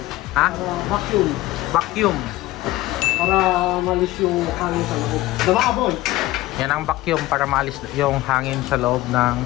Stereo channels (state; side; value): quieter; right; 17.3 dB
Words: ha? Vacuum. Vacuum. Para malis yung hangin sa loob. Diba, boy? Yan ang vacuum para maalis yung hangin sa loob ng